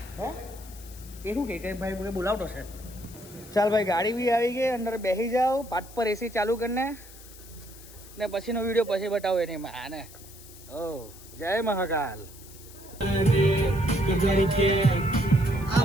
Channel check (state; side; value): noise; left; hiss, 19 dB below the sound